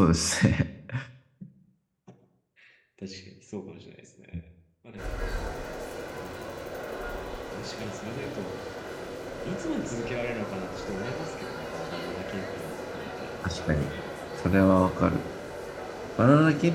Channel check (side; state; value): both; identical; correlation 1.00